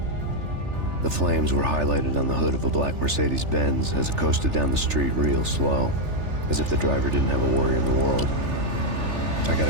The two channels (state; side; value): late; left; 3.4 ms